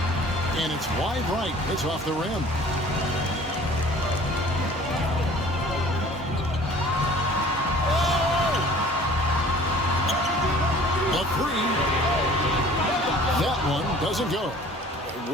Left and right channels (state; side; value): normal; both; correlation 0.49